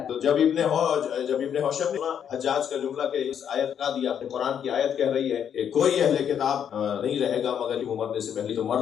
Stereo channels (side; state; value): right; quieter; 8.6 dB